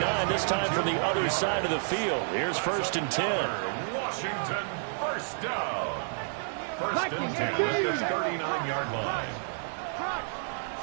this time from the other side of the field. Here's 1st and 10. Washington, first down. 1st and 10 at the 39-yard line.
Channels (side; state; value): left; silent; digital silence